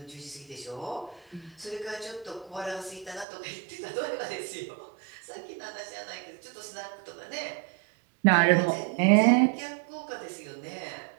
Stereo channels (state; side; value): drops out; left; at 3.2 s